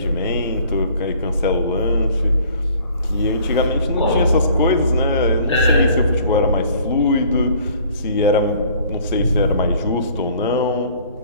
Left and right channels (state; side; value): inverted; both; correlation -0.54